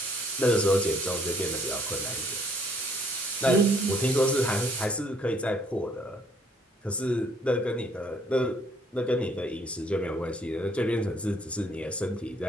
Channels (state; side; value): normal; both; correlation 0.63